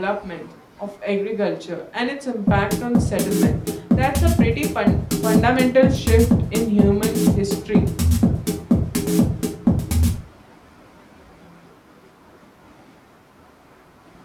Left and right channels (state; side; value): identical; both; correlation 1.00